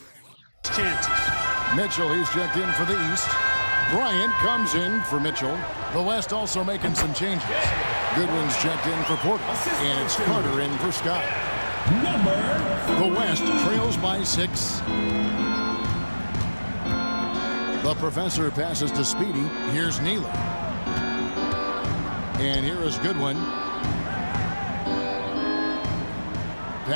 chances. Mitchell, he's checked in for the East. Bryant comes in for Mitchell. The West also making some changes. Goodwin's checked in for Porter, and it's Carter in for Scott. The West trails by 6. The professor passes to Speedy. Here's Neely. And here is Goodwin.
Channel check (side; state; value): both; inverted; correlation -1.00